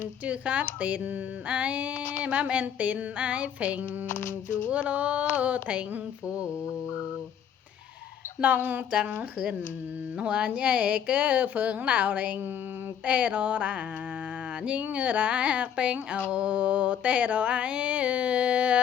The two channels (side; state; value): right; quieter; 8.7 dB